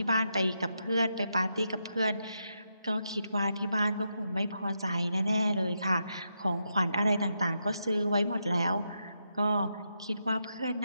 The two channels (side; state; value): both; inverted; correlation -0.83